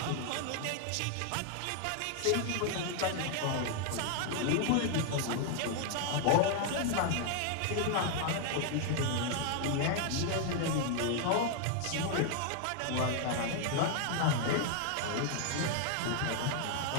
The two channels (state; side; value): different; both; correlation 0.00